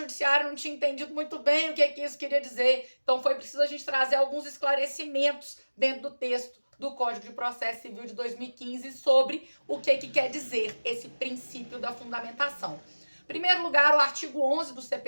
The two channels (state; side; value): inverted; both; correlation -1.00